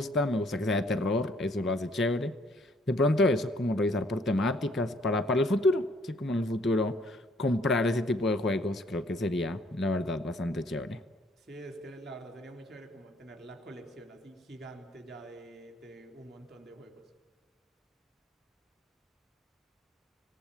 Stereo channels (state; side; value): normal; both; correlation 0.63